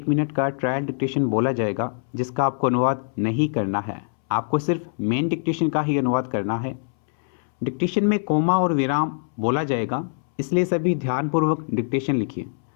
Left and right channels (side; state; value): right; silent; 63 dB below the other